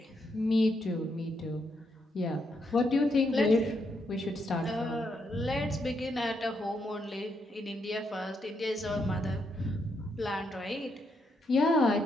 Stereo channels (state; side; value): normal; both; correlation 0.79